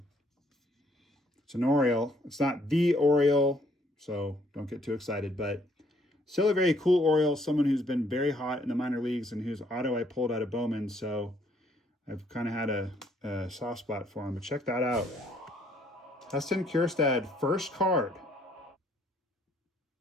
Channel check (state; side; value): normal; both; correlation 0.66